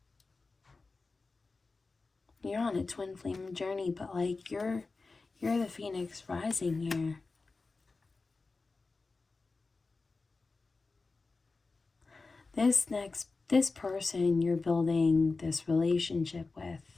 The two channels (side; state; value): right; quieter; 3.9 dB